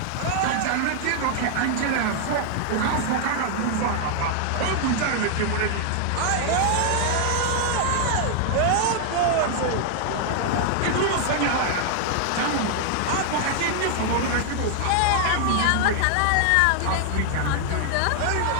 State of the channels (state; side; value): different; both; correlation 0.00